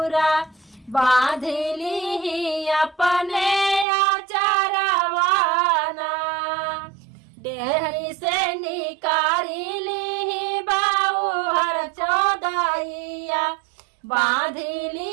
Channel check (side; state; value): left; drops out; at 3.9 s